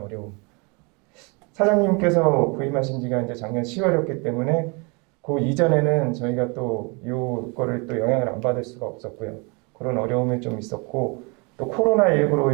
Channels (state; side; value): quieter; left; 30.8 dB